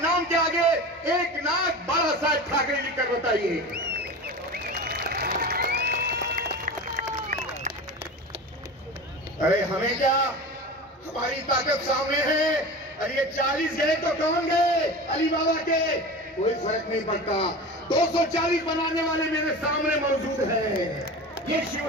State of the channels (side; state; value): both; normal; correlation 0.31